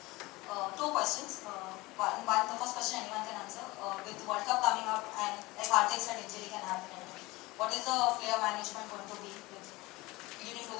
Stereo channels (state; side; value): quieter; right; 21.4 dB